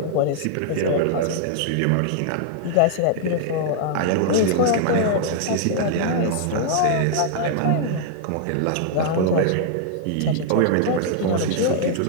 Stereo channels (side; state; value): both; different; correlation -0.01